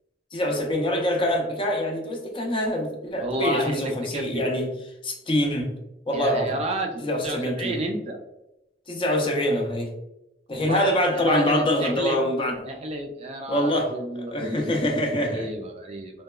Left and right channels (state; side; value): normal; both; correlation 0.36